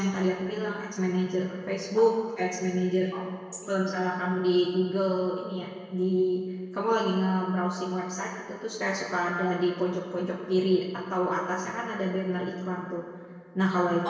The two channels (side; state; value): both; identical; correlation 1.00